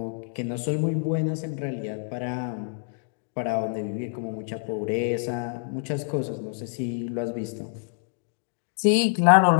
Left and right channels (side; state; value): right; silent; digital silence